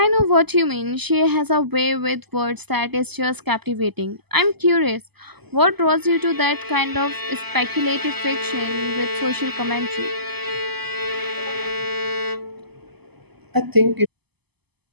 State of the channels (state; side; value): late; left; 0.98 ms